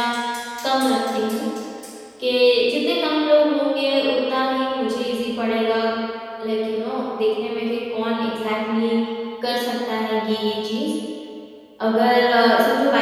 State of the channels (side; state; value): both; identical; correlation 1.00